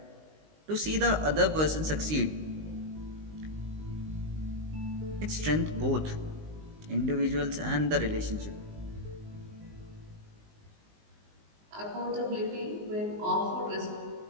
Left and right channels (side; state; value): left; late; 19 ms